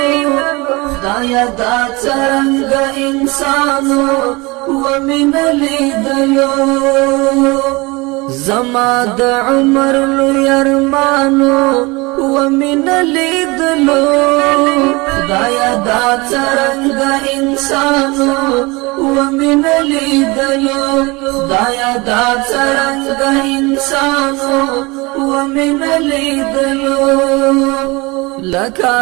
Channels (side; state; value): left; quieter; 24.8 dB